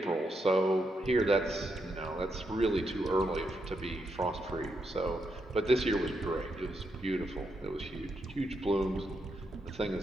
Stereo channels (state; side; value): normal; both; correlation 0.81